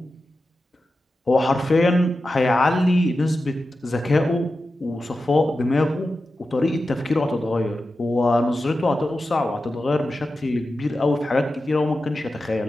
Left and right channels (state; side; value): normal; both; correlation 0.92